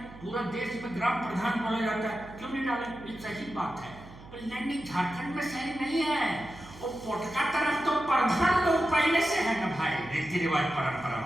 पूरा देश में ग्राम प्रधान बोला जाता है, क्यों नहीं डालेंगे, ये सही बात है। पर नहीं, झारखंड में सही नहीं है, वो पोटका तरफ तो प्रधान लोग पहले से है ना भाई, रीति रिवाज परंपरा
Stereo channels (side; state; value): right; noise; hum, 18 dB below the sound